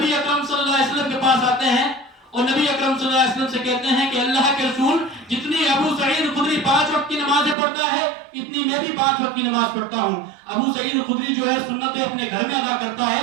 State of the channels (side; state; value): left; drops out; at 7.6 s